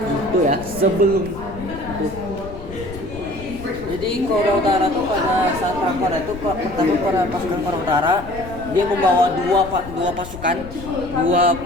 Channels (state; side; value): noise; left; rumble, 13 dB below the sound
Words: itu ya, sebelum itu. Jadi Korea Utara tuh pada saat perang Korea itu pertama pasukan Korea Utara dia membawa dua pasukannya,